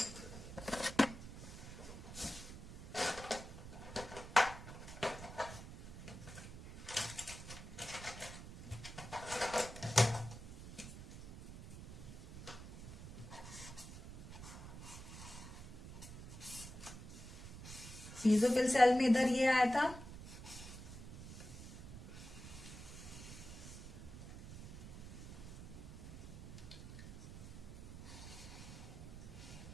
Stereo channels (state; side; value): noise; right; rumble, 11 dB below the sound